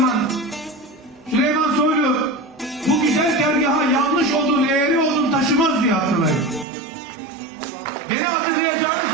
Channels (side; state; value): left; drops out; at 6.7 s